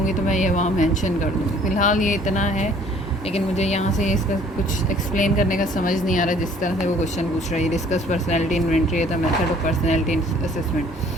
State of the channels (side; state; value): both; normal; correlation 0.56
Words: तो मैं ये वहाँ मेंशन कर दूँगी। फ़िलहाल ये इतना है, लेकिन मुझे यहाँ से इसका कुछ एक्सप्लेन करने का समझ नहीं आ रहा जिस तरह से वो क्वेश्चन पूछ रहा है। डिस्कस पर्सनैलिटी इन्वेंट्री है, the method of personality assessment,